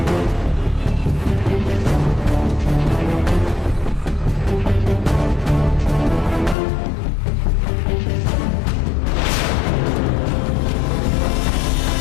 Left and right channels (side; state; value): right; drops out; at 6.6 s